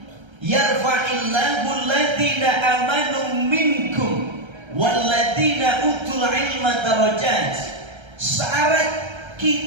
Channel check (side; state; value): left; late; 1.3 ms